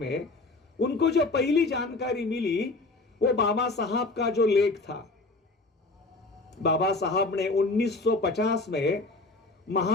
उनको जो पहली जानकारी मिली, वो बाबा साहब का जो लेख था। बाबा साहब ने 1950 में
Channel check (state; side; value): quieter; right; 3.2 dB